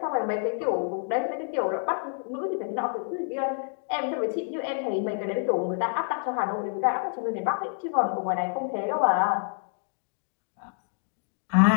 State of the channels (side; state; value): right; silent; digital silence